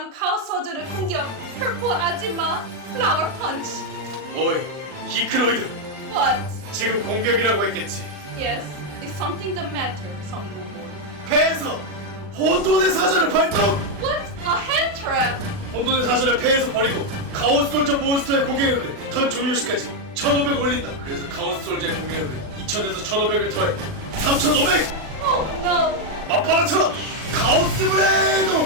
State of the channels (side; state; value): left; late; 39 ms